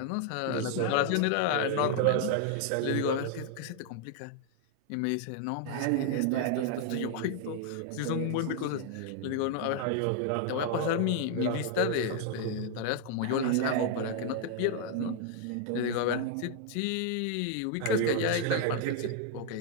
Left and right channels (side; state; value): both; different; correlation 0.00